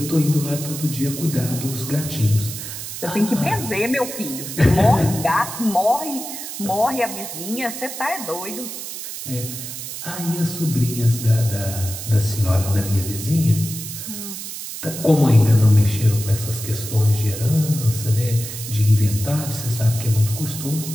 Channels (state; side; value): noise; right; hiss, 8 dB below the sound